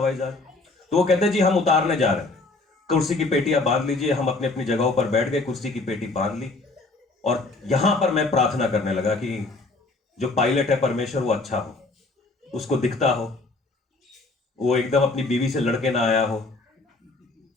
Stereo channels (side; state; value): right; quieter; 3.3 dB